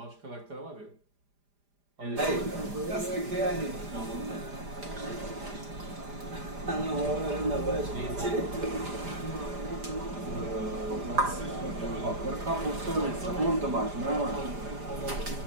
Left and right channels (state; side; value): late; left; 5.0 ms